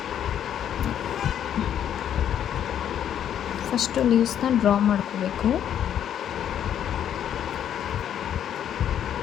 ಫಸ್ಟು ಲೀವ್ಸ್ನ ಡ್ರಾ ಮಾಡ್ಕೋಬೇಕು.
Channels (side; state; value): right; quieter; 9.8 dB